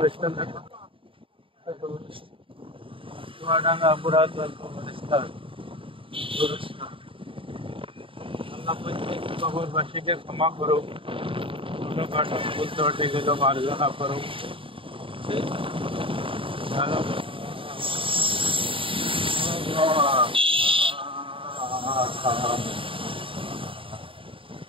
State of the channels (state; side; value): late; left; 0.25 ms